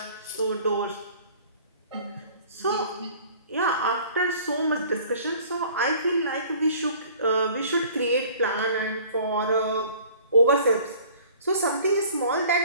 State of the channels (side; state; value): both; inverted; correlation -0.50